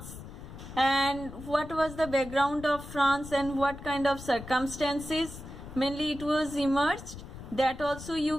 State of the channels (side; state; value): left; noise; rumble, 13 dB below the sound